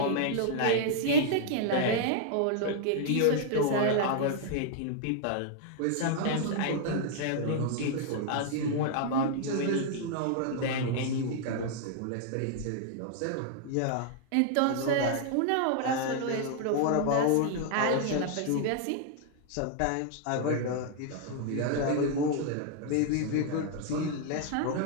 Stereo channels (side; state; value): both; different; correlation -0.01